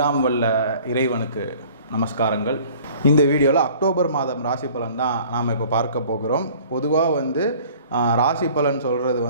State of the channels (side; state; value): both; inverted; correlation -0.50